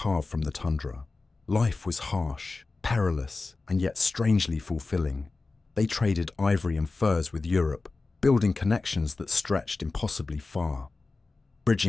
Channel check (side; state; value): right; quieter; 3.7 dB